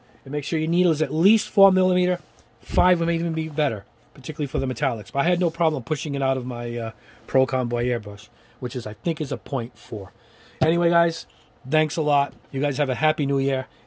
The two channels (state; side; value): identical; both; correlation 1.00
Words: And make sure your needle is at least 4 millimeter. 5 would even be better, particularly for the metallics. But I had no problem pushing it out of my Pro Convoy airbrush, which is, I think, is a 0.4. Anyway, guys, thanks a lot. You guys have a happy new year,